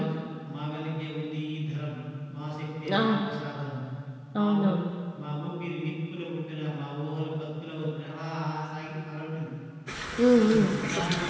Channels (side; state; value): both; identical; correlation 1.00